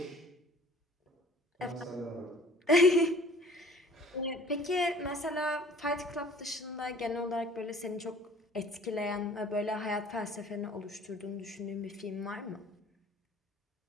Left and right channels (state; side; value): normal; both; correlation 0.50